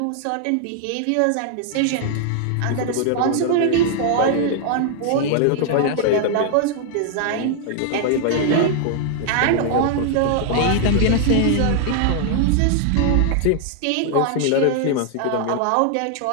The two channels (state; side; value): different; both; correlation 0.00